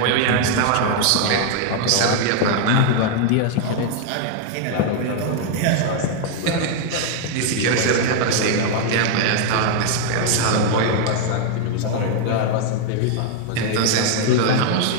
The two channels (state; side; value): different; both; correlation 0.00